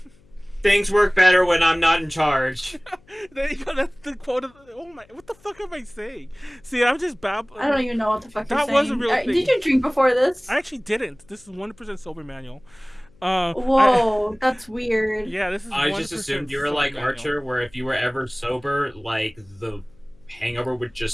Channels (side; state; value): left; noise; hum, 30 dB below the sound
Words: Things work better when I'm not in charge. There you go. That's the quote. Oh my! What the fuck am I saying? See, I'm just babbling. I don't even know what the fuck you're saying. That was a real thing. Did you drink before this? I actually didn't. This is 100% sober, Manuel. Whoa, that's weird. Yeah, this is. I just assumed you were like Archer, where if you were ever sober, like the hangover would